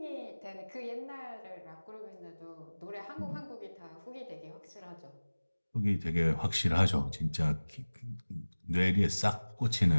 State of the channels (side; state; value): both; inverted; correlation -1.00